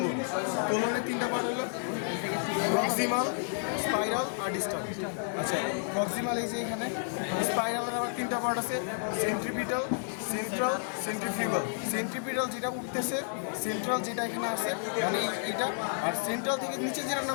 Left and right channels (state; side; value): silent; right; digital silence